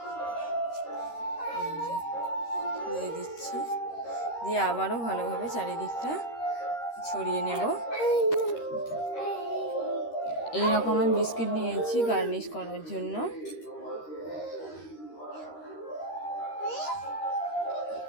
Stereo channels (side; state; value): right; late; 13 ms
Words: দিয়ে দিচ্ছি। দিয়ে আবারও ভালোভাবে চারিদিকটা ছড়িয়ে নেব। এইরকম আমি বিস্কিট নিয়েছি গার্নিশ করার জন্য।